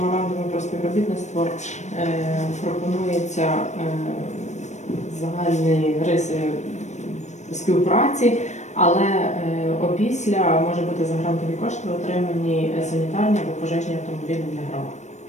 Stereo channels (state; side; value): late; right; 0.34 ms